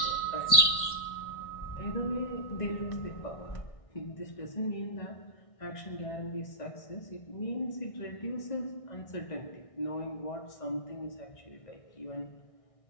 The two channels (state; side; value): late; right; 1.6 ms